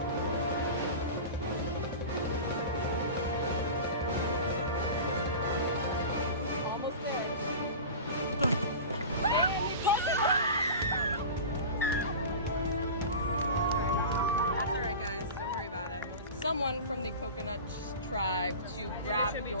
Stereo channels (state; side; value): inverted; both; correlation -0.32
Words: Almost there. That's alright, guys. Don't worry about it. Someone from the coconut tribe to grab